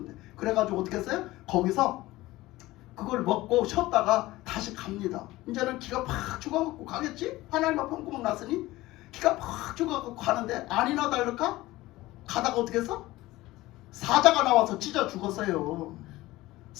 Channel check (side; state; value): right; quieter; 18.1 dB